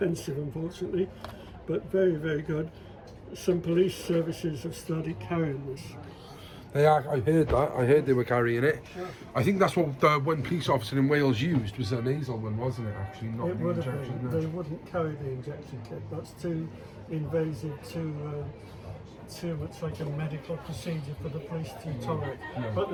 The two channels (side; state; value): both; identical; correlation 1.00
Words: unfortunately, but very good. Some police services have started carrying this. They are, I heard that. I heard they were carrying it. I think that's what the one police officer in Wales used, was a nasal one, wasn't it, actually? Not It the would have injection. been. No. They wouldn't carry the injection kit. That's too invasive, too much like a medical procedure for the police to tolerate. But